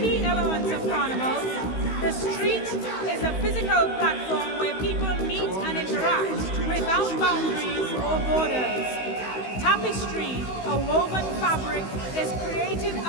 elements of carnival. The street is a physical platform where people meet and interact without boundaries or borders. Tapestry, a woven fabric, is created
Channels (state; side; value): late; right; 16 ms